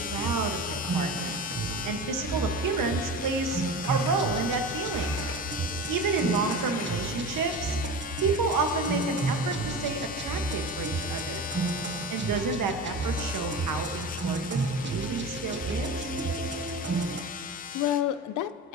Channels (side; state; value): both; normal; correlation 0.29